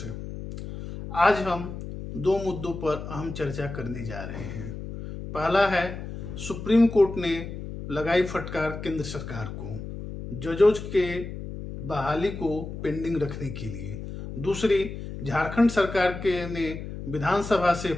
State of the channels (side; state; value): left; noise; hum, 9 dB below the sound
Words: से। आज हम दो मुद्दों पर अहम चर्चा करने जा रहे हैं। पहला है, सुप्रीम कोर्ट ने लगाई फटकार केंद्र सरकार को जजों के बहाली को पेंडिंग रखने के लिए। दूसरी, झारखंड सरकार के ने विधानसभा से